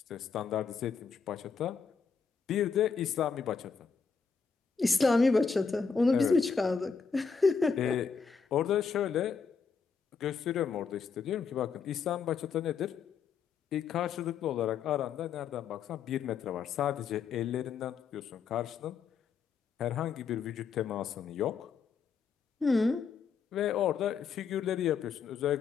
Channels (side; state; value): right; quieter; 5.8 dB